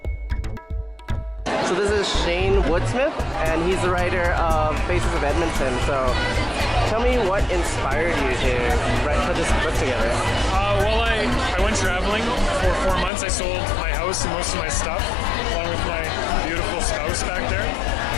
So this is Shane Woodsmith, and he's the writer of Faces of Edmonton. So tell me what inspired you to put this book together? Well, I went traveling for 4 months. I sold my house and most of my stuff, along with my beautiful spouse back there.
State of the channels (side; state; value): right; drops out; at 13.1 s